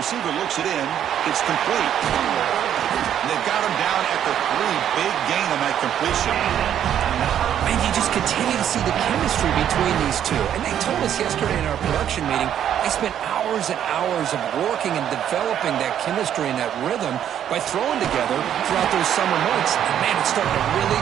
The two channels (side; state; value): left; quieter; 10.0 dB